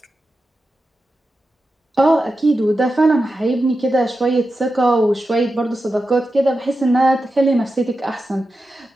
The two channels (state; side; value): normal; both; correlation 0.91